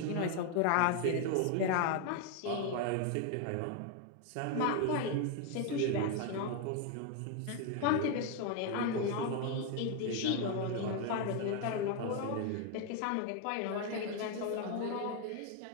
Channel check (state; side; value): different; both; correlation 0.01